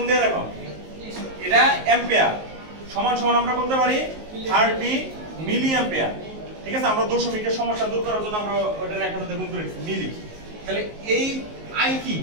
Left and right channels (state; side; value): late; left; 19 ms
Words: দিয়ে দেখো। এটা অ্যাম্পিয়ার সমান আমরা বলতে পারি 30 মিলি অ্যাম্পিয়ার, ঠিক আছে? আমরা দশমিকের সমস্যা দূর করার জন্য আমরা ওটা 1000 দিয়ে গুণ করেছি মিলি। তাহলে এই